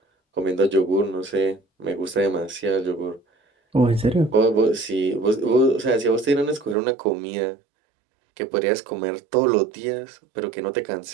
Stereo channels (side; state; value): left; drops out; at 6.8 s